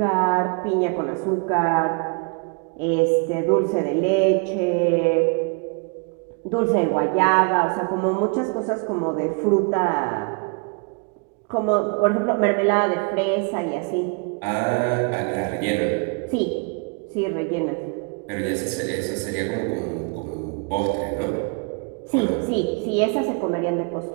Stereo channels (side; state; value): left; quieter; 35.3 dB